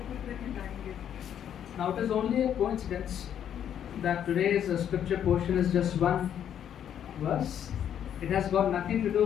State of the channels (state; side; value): quieter; right; 9.5 dB